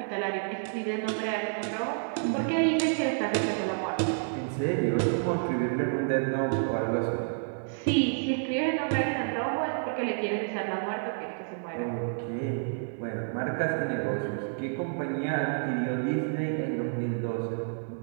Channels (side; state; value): left; silent; digital silence